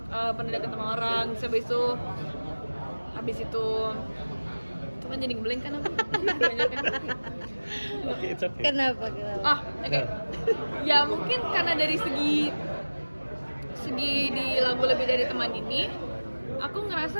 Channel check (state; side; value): inverted; both; correlation -1.00